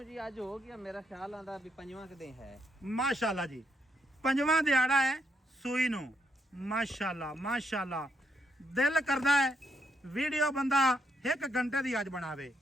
ਜੀ ਅੱਜ ਹੋ ਗਿਆ ਮੇਰਾ ਖਿਆਲ ਆਂਦਾ ਵੀ ਪੰਜਵਾਂ ਕਦੇ ਹੈ। ਮਾਸ਼ਾਅੱਲਾ ਜੀ ਪੰਜਵਾਂ ਦਿਹਾੜਾ ਹੈ ਸੂਈ ਨੂੰ। ਮਾਸ਼ਾਅੱਲਾ ਮਾਸ਼ਾਅੱਲਾ ਦਿਲ ਕਰਦਾ ਹੈ ਵੀਡੀਓ ਬੰਦਾ 1 ਘੰਟੇ ਦੀ ਅੱਜ ਬਣਾਵੇ।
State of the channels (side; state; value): both; normal; correlation 0.77